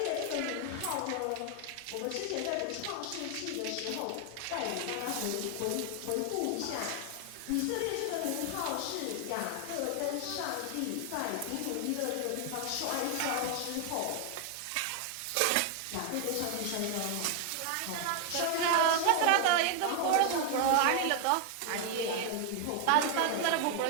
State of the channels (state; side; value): different; both; correlation 0.00